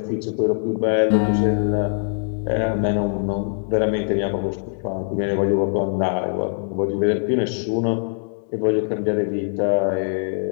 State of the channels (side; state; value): right; silent; digital silence